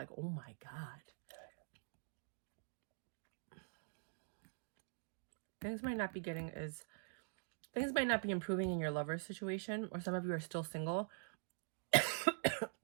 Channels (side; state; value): left; silent; digital silence